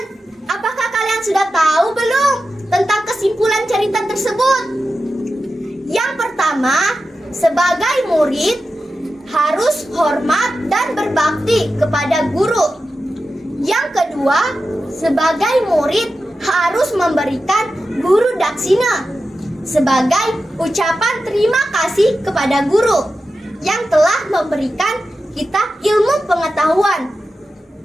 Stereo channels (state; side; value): normal; both; correlation 0.92